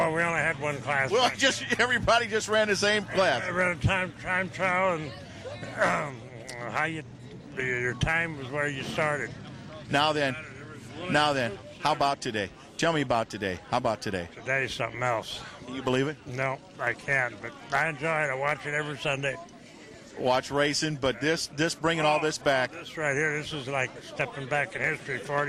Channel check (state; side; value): identical; both; correlation 1.00